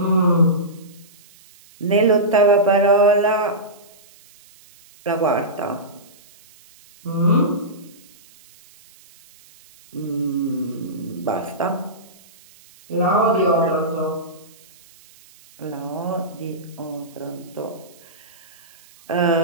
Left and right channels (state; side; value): noise; right; hiss, 26 dB below the sound